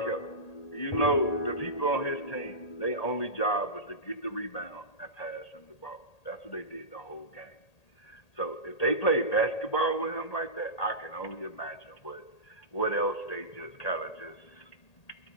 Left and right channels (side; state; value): right; late; 1.8 ms